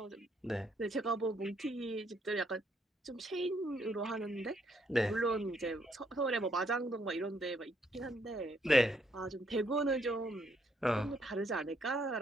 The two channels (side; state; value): both; normal; correlation 0.72